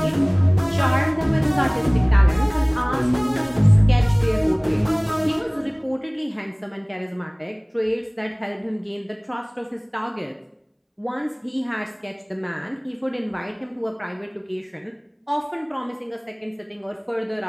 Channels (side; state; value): both; identical; correlation 1.00